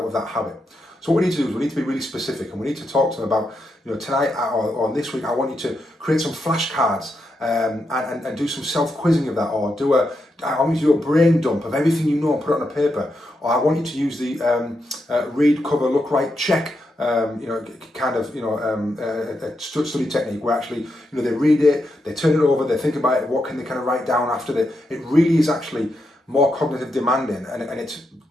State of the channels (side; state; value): both; normal; correlation 0.84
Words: of that habit. So what we need to do is we need to be really specific, and we need to talk to them about, tonight or this week, I want you to create some flashcards and do some self-quizzing of that, or I want you to do a brain dump of everything you know and put it on a paper, or I want you to use the read, cover, look, write, check a study technique where actually, they read it, they turn it over, they think about it, what can they kind of write down after that. It really is actually more cognitive demanding, and it's